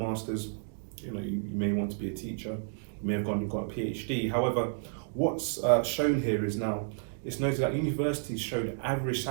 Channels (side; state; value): left; silent; digital silence